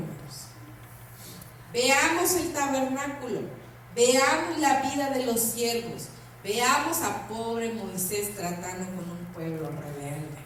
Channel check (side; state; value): both; identical; correlation 1.00